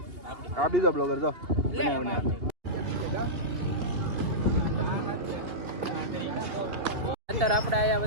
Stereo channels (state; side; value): late; left; 2.8 ms